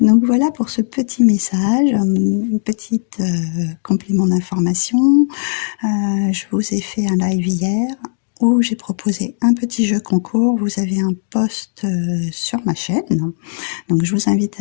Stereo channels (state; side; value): silent; right; digital silence